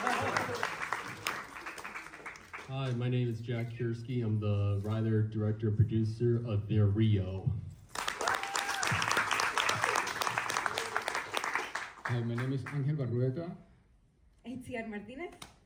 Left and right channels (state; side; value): identical; both; correlation 1.00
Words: Hi, my name is Jack Kiersky. I'm the writer, director, and producer of The Rio. Hi, my name is Angel Barrueta. Itziar Martinez.